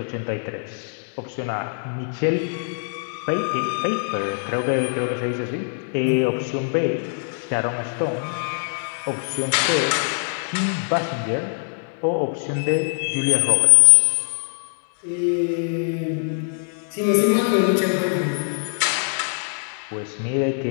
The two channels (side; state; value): right; silent; digital silence